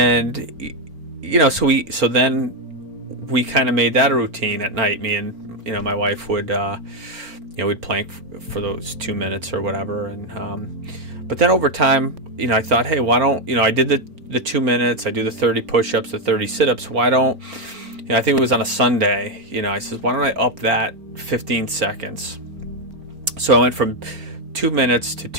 so then we kind of made that a routine at night. Me and my wife would we'd plank for those 2 minutes or whatever. And but then over time, I thought, hey, why don't I did the 2 minutes, I do the 30 push-ups, the 30 sit-ups. Why don't I think it was on a Sunday. I said, why don't I up that 15 seconds? So I went from 2 minutes to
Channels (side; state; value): left; late; 4.4 ms